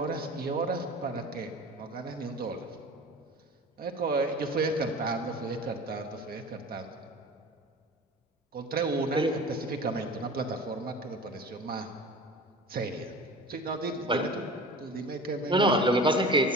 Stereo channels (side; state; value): both; normal; correlation 0.38